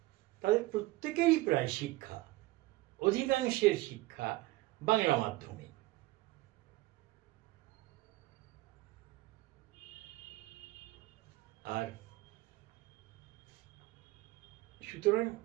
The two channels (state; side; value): quieter; left; 19.3 dB